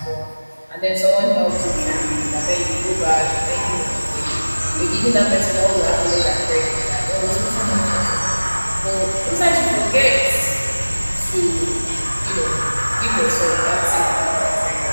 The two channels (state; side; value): inverted; both; correlation -1.00